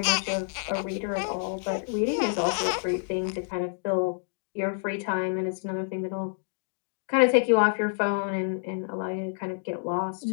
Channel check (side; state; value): right; silent; digital silence